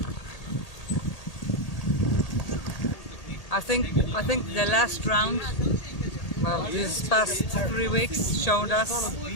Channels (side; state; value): right; late; 1.8 ms